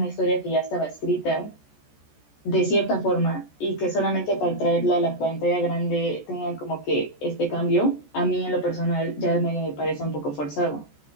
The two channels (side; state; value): right; late; 14 ms